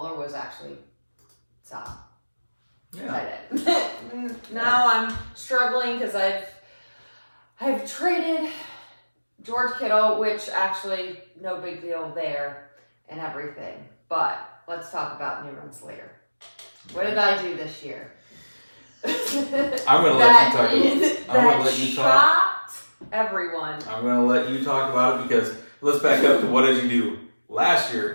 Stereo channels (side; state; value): both; inverted; correlation -1.00